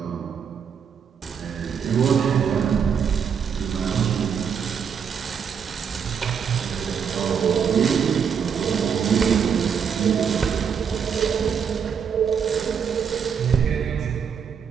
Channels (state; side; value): quieter; left; 7.1 dB